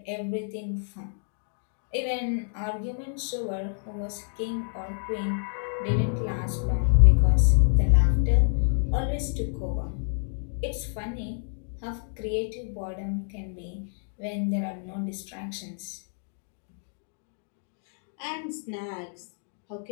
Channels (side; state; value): right; silent; digital silence